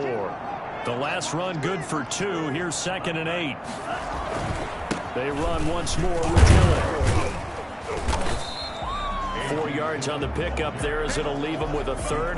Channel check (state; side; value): identical; both; correlation 1.00